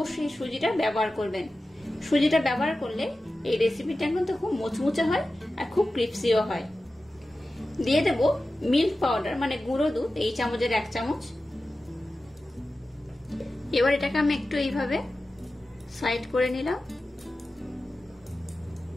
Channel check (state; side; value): normal; both; correlation 0.94